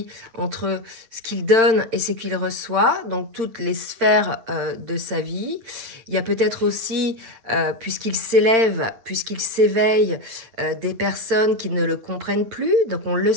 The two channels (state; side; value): late; left; 8.8 ms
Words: entre ce qu'il donne et ce qu'il reçoit, donc toutes les sphères de sa vie. Il y a peut-être aussi, puisqu'il s'élève, puisqu'il s'éveille, des personnes qui ne le comprennent plus. Donc on le